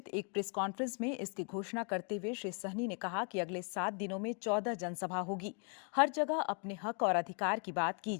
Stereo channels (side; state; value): right; quieter; 39.7 dB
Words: एक प्रेस कॉन्फ्रेंस में इसकी घोषणा करते हुए श्री सहनी ने कहा कि अगले 7 दिनों में 14 जनसभा होगी। हर जगह अपने हक और अधिकार की बात की